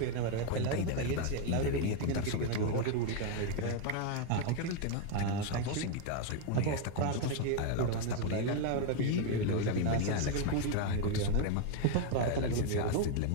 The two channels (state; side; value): different; both; correlation 0.01